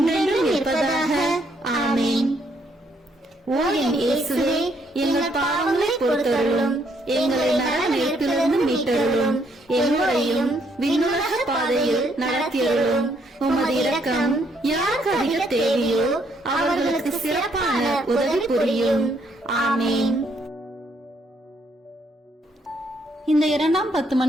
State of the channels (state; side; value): normal; both; correlation 0.71